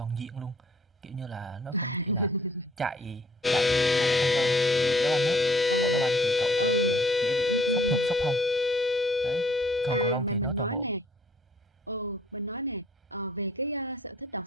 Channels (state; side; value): normal; both; correlation 0.58